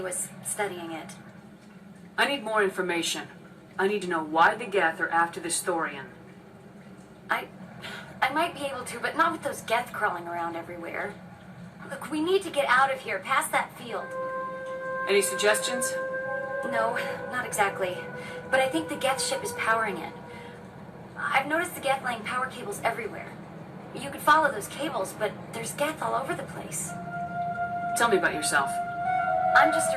was studying it. I need more information. I need to know why the Geth are after this Thorian. I might be able to, but not with those Geth crawling around everywhere. Look, we need to get out of here, past that field. Any suggestions? No, not exactly. But I think the Geth ship is powering it. I've noticed the Geth laying power cables everywhere. You could follow those cables, but there's Geth all over the place. Tell me about yourself. I'm just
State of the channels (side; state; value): both; identical; correlation 1.00